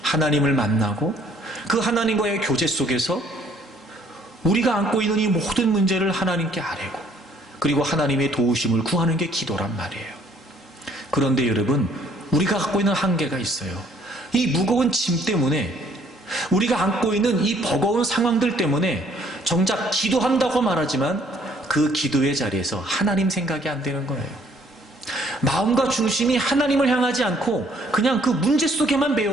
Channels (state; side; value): normal; both; correlation 0.62